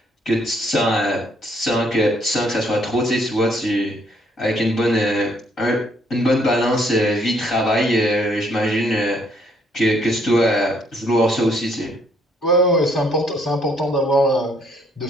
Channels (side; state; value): both; normal; correlation 0.68